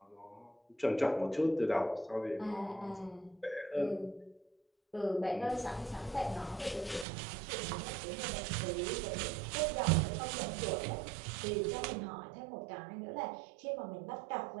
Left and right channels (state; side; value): drops out; left; at 7.1 s